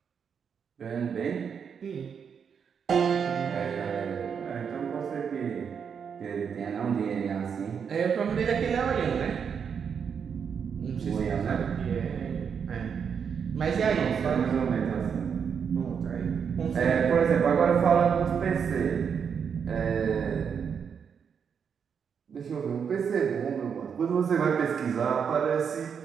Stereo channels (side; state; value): left; quieter; 6.9 dB